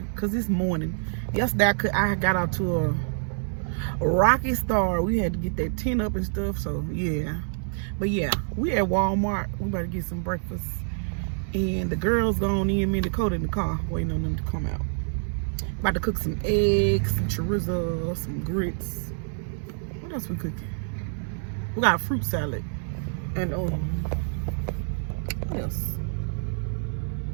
because this morning. Yesterday I got out to a rocky start. We had to get that tent up and stuff. So yeah. But yeah, we at Walmart. We about to get some breakfast. And the girls gone in, me and Dakota in the car waiting on them to come out. About to cook some eggs, some chorizo, some grits. What else we cooking? We got a fruit salad. And what else?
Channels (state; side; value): silent; left; 60 dB below the other